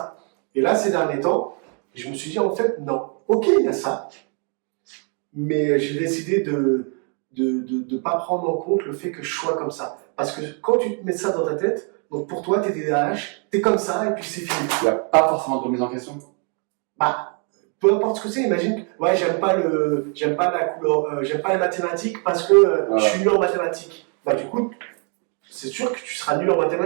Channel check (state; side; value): quieter; left; 39.5 dB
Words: Et là, ces derniers temps, je me suis dit en fait, non. Ok, il y a ça. Mais j'ai décidé de pas prendre en compte le fait que je sois comme ça. Parce que quand tu te mets ça dans ta tête, donc pour toi, t'es TDAH, t'es comme ça et puis c'est fini. Il n'y a pas forcément de remise en question. Peu importe ce que c'est, imagine, ouais, j'aime pas la couleur, j'aime pas les mathématiques parce que je suis nul en mathématiques. Du coup, c'est sûr que tu seras nul en